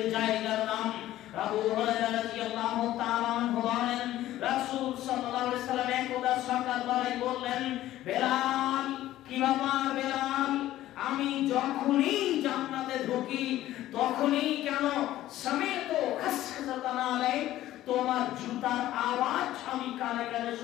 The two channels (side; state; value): right; quieter; 14.3 dB